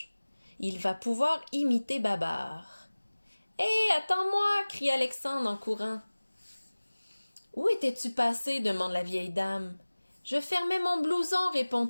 Il va pouvoir imiter Babar. « Hé, attends-moi » crie Alexandre en courant. « Où étais-tu passé » demande la vieille dame. « Je fermais mon blouson »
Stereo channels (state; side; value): inverted; both; correlation -1.00